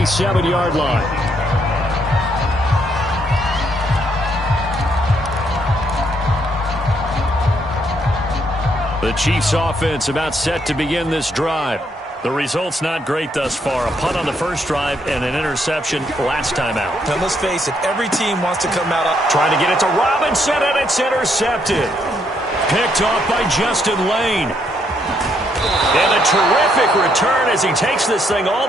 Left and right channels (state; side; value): normal; both; correlation 0.73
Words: line. The Chiefs offense about set to begin this drive. The result's not great thus far. A punt on the first drive and an interception last time out. Now let's face it, every team wants to come out up. Trying to get it to Robinson, and it's intercepted. Picked off by Justin Lane. And a terrific return as he takes this thing all